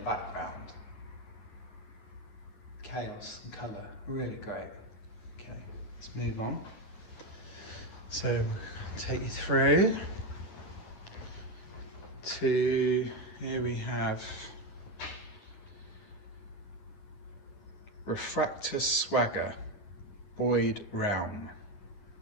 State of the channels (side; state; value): right; late; 9.8 ms